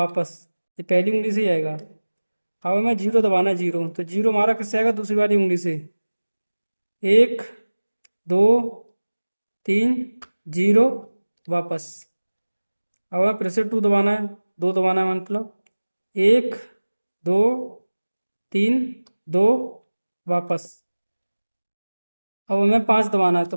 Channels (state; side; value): inverted; both; correlation -1.00